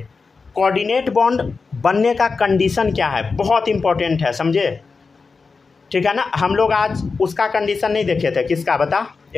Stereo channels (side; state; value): right; quieter; 4.6 dB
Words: कोऑर्डिनेट बॉन्ड बनने का कंडीशन क्या है, बहुत इंपॉर्टेंट है, समझे, ठीक है ना। हम लोग आज उसका कंडीशन नहीं देखे थे, किसका बता,